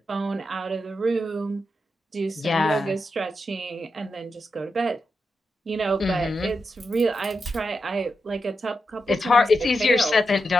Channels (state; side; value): normal; both; correlation 0.87